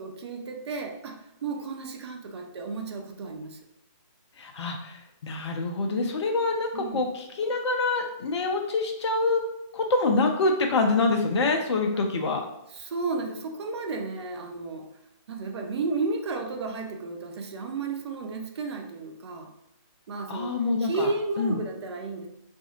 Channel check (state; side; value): inverted; both; correlation -0.41